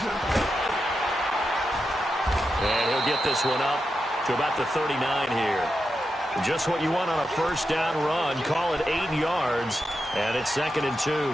And he'll get this one up to about the 39 here. Just what you want on a 1st down run. Call it 8 yards, and it's 2nd and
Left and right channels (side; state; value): both; normal; correlation 0.88